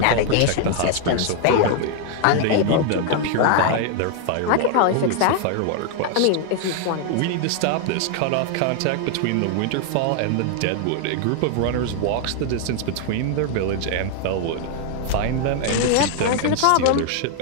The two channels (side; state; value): both; different; correlation 0.00